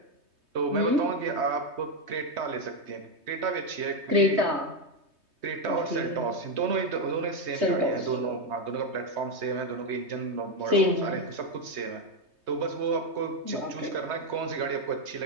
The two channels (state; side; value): late; left; 3.2 ms